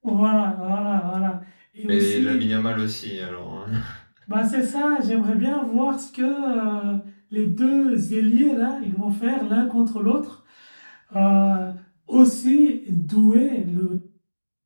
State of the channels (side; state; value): both; inverted; correlation -1.00